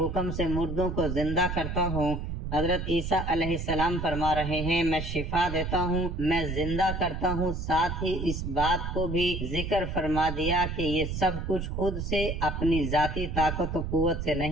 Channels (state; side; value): noise; right; rumble, 4 dB below the sound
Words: سے مردوں کو زندہ کرتا ہوں۔ حضرت عیسیٰ علیہ السلام فرما رہے ہیں، میں شفا دیتا ہوں، میں زندہ کرتا ہوں۔ ساتھ ہی اس بات کو بھی ذکر فرما دیا کہ یہ سب کچھ خود سے اپنی ذاتی طاقت و قوت سے